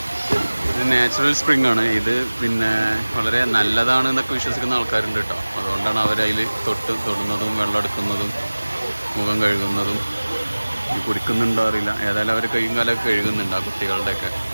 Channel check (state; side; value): inverted; both; correlation -1.00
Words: ഇത് natural spring ആണ്. ഇത് പിന്നെ വളരെ നല്ലതാണ് എന്നൊക്കെ വിശ്വസിക്കുന്ന ആൾക്കാരുണ്ട് കേട്ടോ. അതുകൊണ്ടാണ് അവരതിൽ തൊടുന്നതും വെള്ളം എടുക്കുന്നതും മുഖം കഴുകുന്നതും. കുടിക്കുന്നുണ്ടോ അറിയില്ല, ഏതായാലും അവർ കൈയും കാലമൊക്കെ കഴുകുന്നുണ്ട് ആ കുട്ടികളുടെയൊക്കെ.